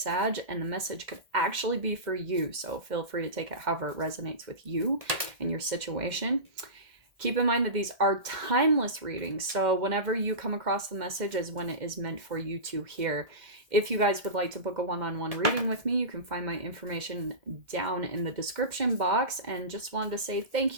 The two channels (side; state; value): left; late; 2.1 ms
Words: and the message could actually be for you. So, feel free to take it however it resonates with you and your situation. Keep in mind that these are timeless readings, so whenever you come across the message is when it is meant for you to hear. If you guys would like to book a one-on-one reading with me, you can find my information down in the description box. And just wanted to say thank